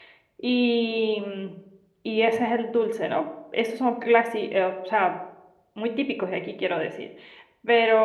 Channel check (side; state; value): both; identical; correlation 1.00